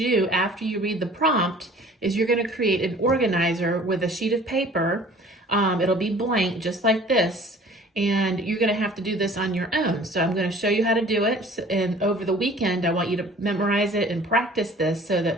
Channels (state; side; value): normal; both; correlation 0.49